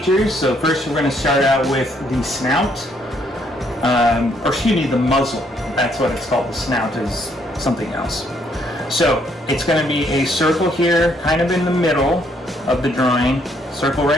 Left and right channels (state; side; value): normal; both; correlation 0.70